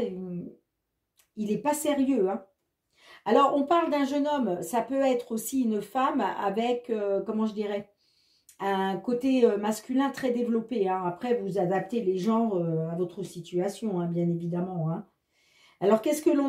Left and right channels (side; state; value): both; identical; correlation 1.00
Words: il n'est pas sérieux. Hein. Alors, on parle d'un jeune homme, ça peut être aussi une femme avec, comment je dirais, un côté masculin très développé. Hein. Après, vous adaptez les genres à votre situation, hein, bien évidemment. Hein. Alors, qu'est-ce que